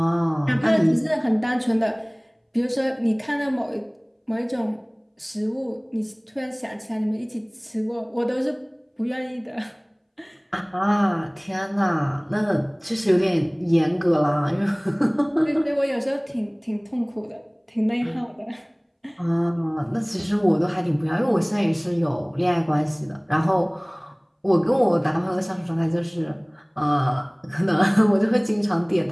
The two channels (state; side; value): identical; both; correlation 1.00